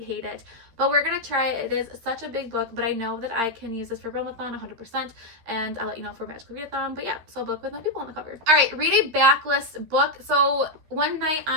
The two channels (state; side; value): late; left; 13 ms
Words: hate it, but we're gonna try it. It is such a big book, but I know that I can use this for REALMATHON 100%, and I'll let you know for Magical Readathon. But yeah, so a book with no people on the cover. All right, read a backlist book. So one night